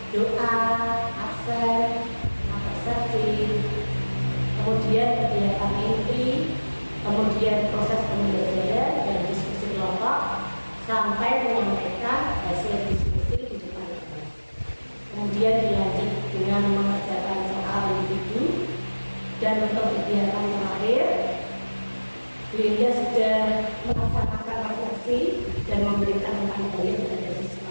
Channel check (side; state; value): both; inverted; correlation -1.00